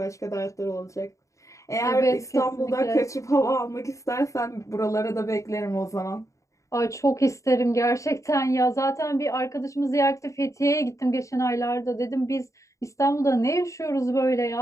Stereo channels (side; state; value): right; late; 0.15 ms